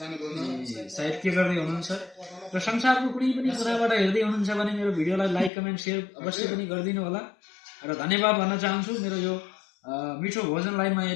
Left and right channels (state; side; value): drops out; right; at 5.5 s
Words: सायद के गर्दै हुनुहुन्छ र संसारको कुनै पनि कुनाबाट हेर्दै हुनुहुन्छ भने मेरो भिडियोलाई लाइक, कमेन्ट, शेयर अवश्य पनि गरिदिनु होला। र धन्यवाद भन्न चाहन्छु। मेरो यो मिठो भोजनलाई म